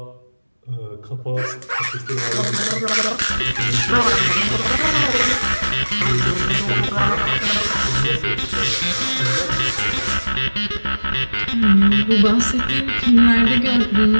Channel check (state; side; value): inverted; both; correlation -1.00